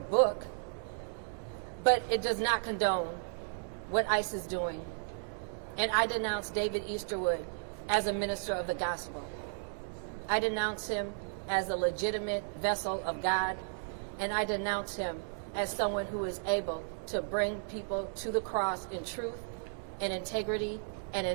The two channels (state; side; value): silent; left; 55 dB below the other